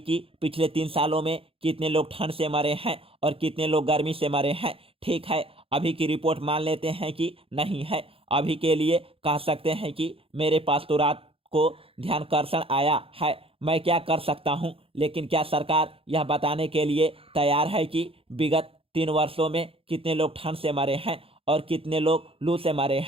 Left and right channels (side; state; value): left; late; 0.27 ms